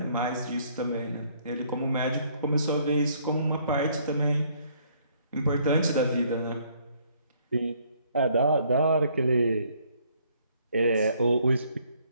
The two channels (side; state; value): both; inverted; correlation -0.65